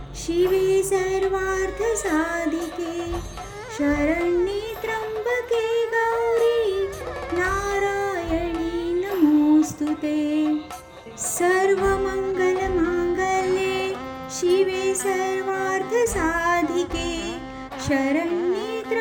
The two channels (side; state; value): both; identical; correlation 1.00